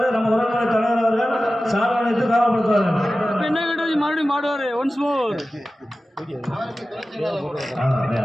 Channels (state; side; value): normal; both; correlation 0.95